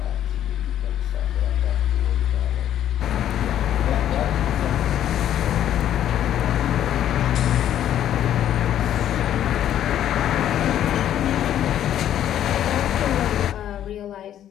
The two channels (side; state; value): right; quieter; 11.0 dB